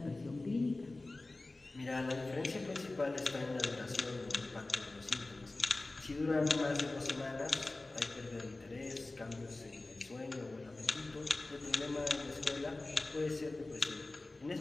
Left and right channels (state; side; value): quieter; right; 3.0 dB